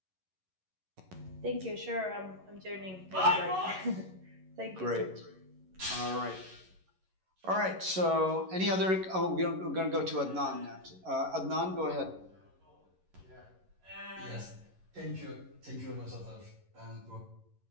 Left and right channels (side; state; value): left; late; 11 ms